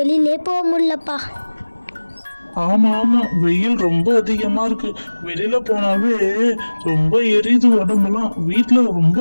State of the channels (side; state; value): both; inverted; correlation -1.00